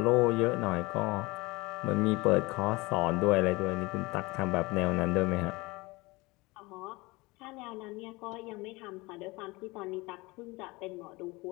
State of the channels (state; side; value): quieter; right; 23.4 dB